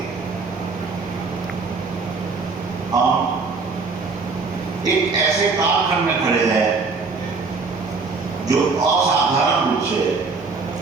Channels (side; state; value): left; quieter; 4.3 dB